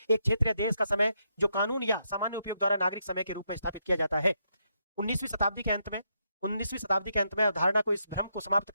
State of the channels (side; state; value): both; inverted; correlation -0.79